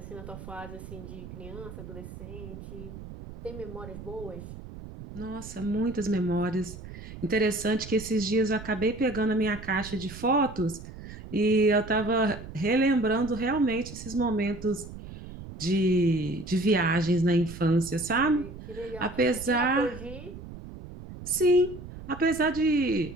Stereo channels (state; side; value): noise; right; rumble, 13 dB below the sound